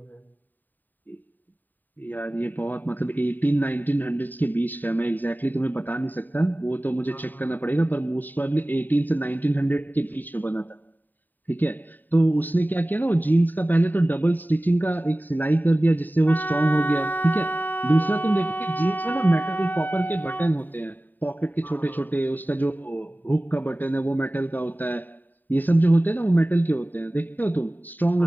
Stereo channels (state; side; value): late; right; 0.088 ms